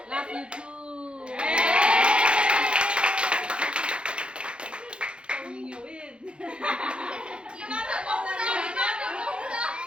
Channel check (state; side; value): late; left; 0.056 ms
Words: love you too